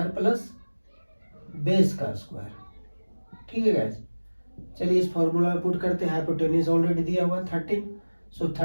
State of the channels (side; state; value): both; inverted; correlation -1.00